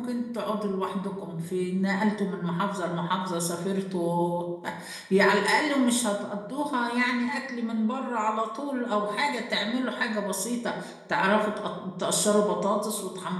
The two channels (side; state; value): both; identical; correlation 1.00